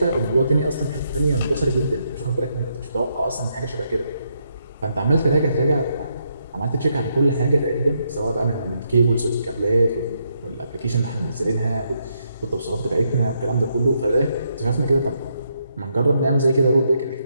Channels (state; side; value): inverted; both; correlation -0.78